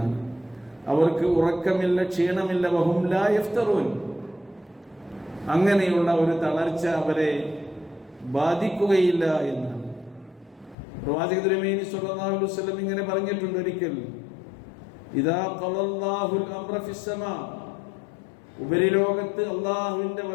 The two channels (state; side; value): drops out; right; at 10.8 s